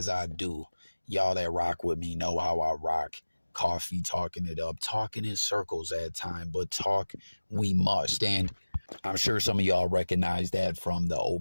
I do. Y'all that rock with me know how I rock. Coffee talking it up, talking in circles at time, but talk we must. And I'm sure some of y'all recognize that from the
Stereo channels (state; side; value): inverted; both; correlation -1.00